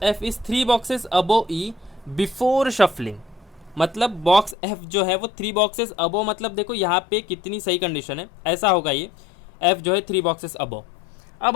F is 3 boxes above E before shuffling, मतलब बॉक्स एफ जो है वो 3 बॉक्सेस अबव, मतलब देखो यहाँ पे कितनी सही कंडीशन है। ऐसा होगा ये एफ जो है 3 बॉक्सेस अबव।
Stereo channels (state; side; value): drops out; right; at 4.5 s